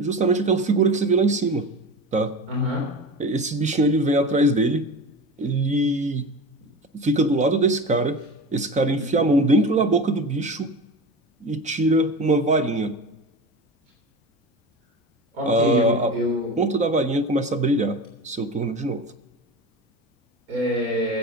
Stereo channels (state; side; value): normal; both; correlation 0.30